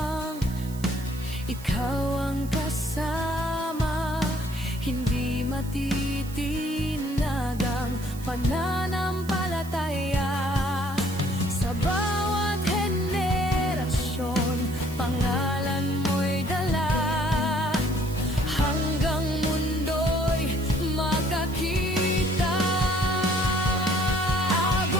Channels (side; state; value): right; noise; hiss, 18 dB below the sound